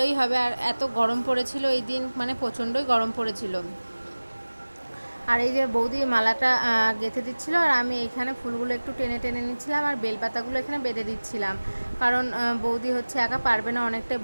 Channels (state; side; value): inverted; both; correlation -1.00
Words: হবে। আর এত গরম পড়েছিল এই দিন, মানে প্রচণ্ডই গরম পড়েছিল। আর এই যে বৌদি মালাটা গেঁথে দিচ্ছিল, আর আমি এখানে ফুলগুলো একটু টেনে টেনে নিচ্ছিলাম, আর বেলপাতাগুলো এখানে বেঁধে দিচ্ছিলাম, কারণ বৌদি হচ্ছে একা পারবে না, অনেকটাই